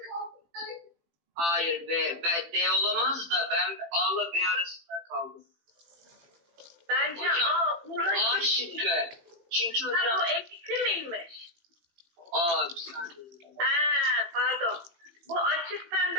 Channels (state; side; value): late; left; 18 ms